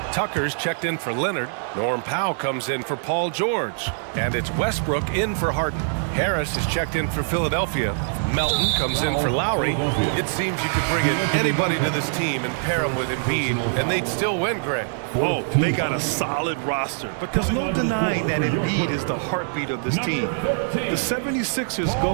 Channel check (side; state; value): left; silent; 63 dB below the other